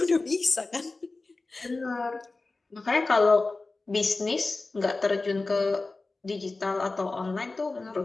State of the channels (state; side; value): quieter; right; 3.5 dB